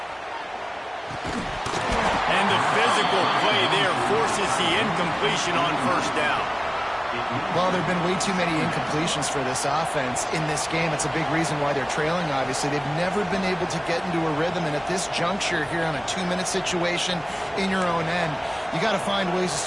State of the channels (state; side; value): identical; both; correlation 1.00